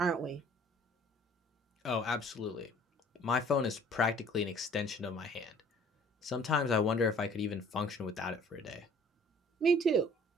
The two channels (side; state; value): both; normal; correlation 0.53